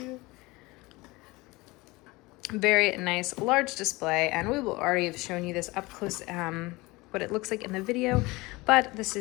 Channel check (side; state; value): right; quieter; 22.5 dB